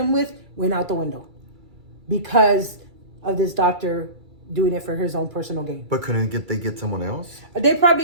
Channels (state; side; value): late; left; 2.3 ms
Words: with went out the window because of this doctor doing it for his own personal gain. But couldn't they get someone else? They